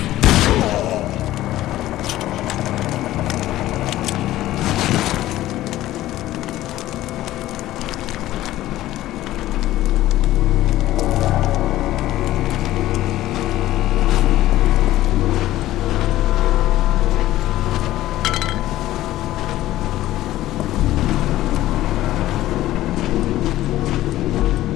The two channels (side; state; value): right; quieter; 14.9 dB